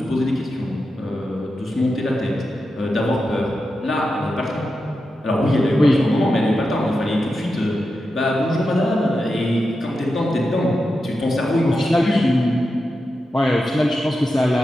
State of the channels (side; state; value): both; normal; correlation 0.89